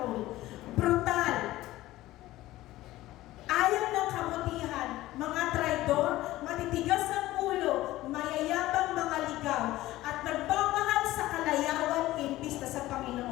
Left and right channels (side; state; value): right; quieter; 16.5 dB